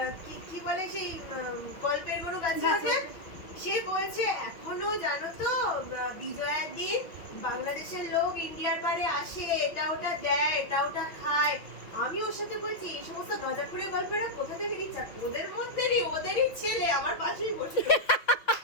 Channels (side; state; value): right; late; 5.8 ms